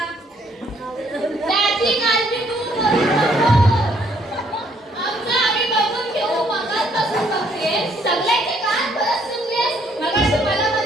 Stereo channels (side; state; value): both; normal; correlation 0.66